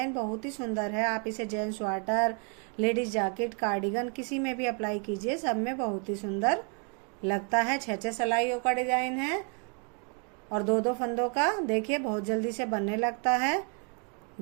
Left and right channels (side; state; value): left; quieter; 36.6 dB